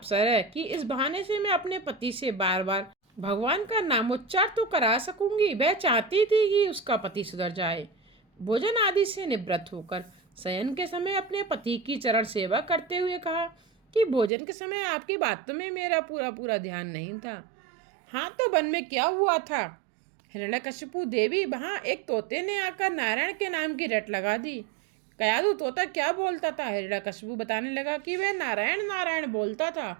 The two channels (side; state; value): left; drops out; at 14.3 s